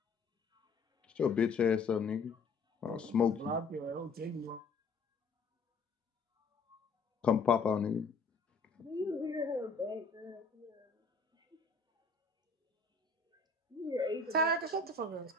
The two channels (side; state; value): right; quieter; 4.1 dB